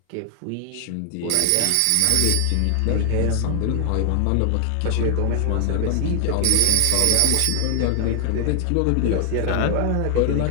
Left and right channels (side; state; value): both; different; correlation 0.00